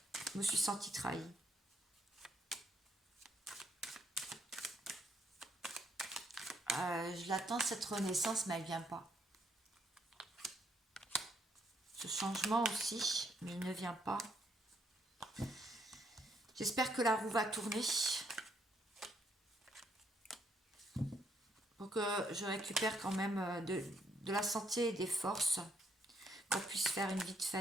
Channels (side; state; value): both; normal; correlation 0.73